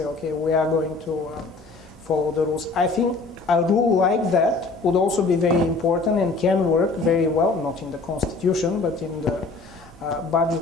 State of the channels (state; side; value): quieter; right; 3.7 dB